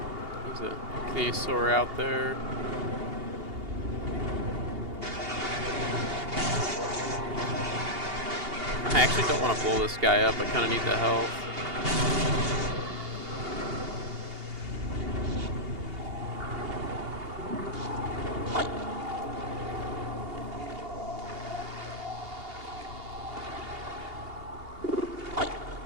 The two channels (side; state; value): left; late; 2.8 ms